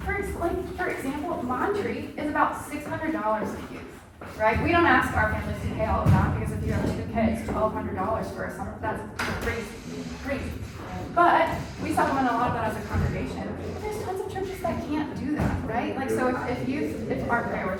for example, Monterey is about $600 a youth, right? We don't ask our families to pay all of that because if you have 2 kids, $1,200 for a summer, that's crazy. But we supplement a lot of that as a congregation. There's tons of churches that can't do that, right? Like, so if youth aren't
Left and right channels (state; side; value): identical; both; correlation 1.00